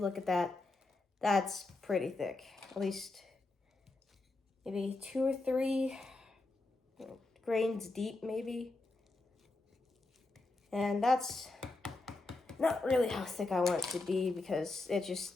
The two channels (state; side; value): quieter; right; 3.2 dB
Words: look at that, that's pretty thick. At least maybe 2 or 3 grains deep maybe. And that's not really how thick I want it to be, because it